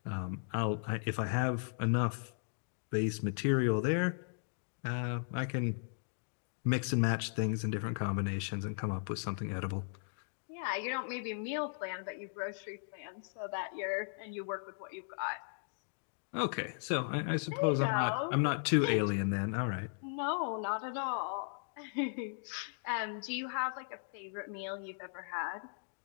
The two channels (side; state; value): right; silent; digital silence